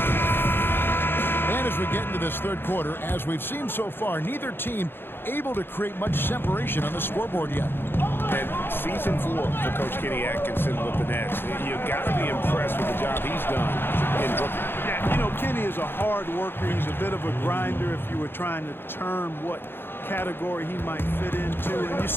And as we get into this third quarter, as we've seen so far, neither team able to create much separation on the scoreboard yet. And season 4 for Coach Kenny Atkinson with the Nets. You got to be impressed with the job he's done in Brooklyn. Yeah, you know, Kenny is a hard worker. He's a bit of a grinder if you were trying to term what category he might fit into. And you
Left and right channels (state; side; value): late; right; 0.10 ms